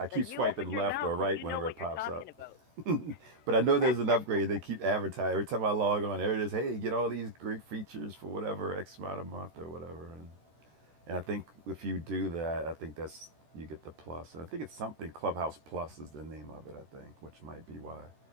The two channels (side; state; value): left; late; 13 ms